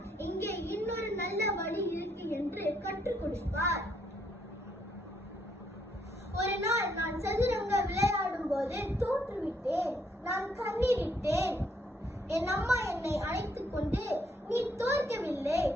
இங்கே இன்னொரு நல்ல வழி இருக்கு என்று கற்றுக் கொடுப்பார். ஒரு நாள் நான் சதுரங்க விளையாடும் போது தோற்றுவிட்டேன். நான் கண்ணீரிட்டேன். என் அம்மா என்னை அழைத்துக் கொண்டு, நீ தோற்கவில்லை,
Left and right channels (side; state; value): both; normal; correlation 0.72